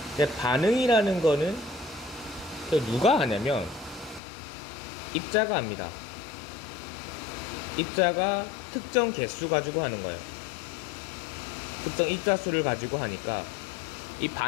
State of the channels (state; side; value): drops out; right; at 4.2 s